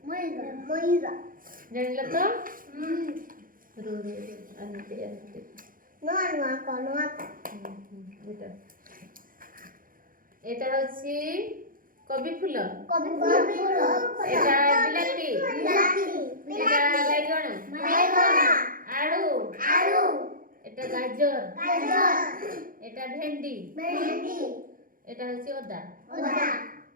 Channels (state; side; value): late; left; 0.40 ms